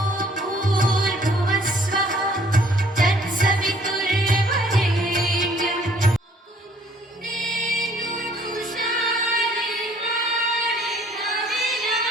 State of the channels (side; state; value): both; normal; correlation 0.59